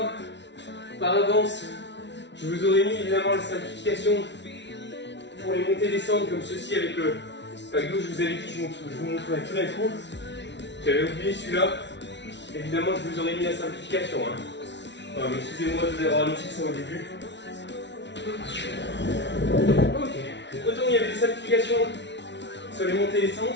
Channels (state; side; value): late; right; 0.51 ms